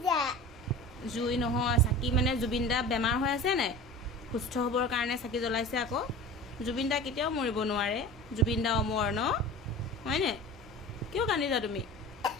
জুই নহয় চাকি মানে জুবিন দা বেমাৰ হৈ আছে নাই সুস্থ হ'বৰ কাৰণে চাকি জ্বলাইছে আকৌ জুবিন দা কেতিয়াও মৰিব নোৱাৰে জুবিন দা অমৰ ন হয়নে কিয় কান্দিছা তুমি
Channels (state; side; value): normal; both; correlation 0.36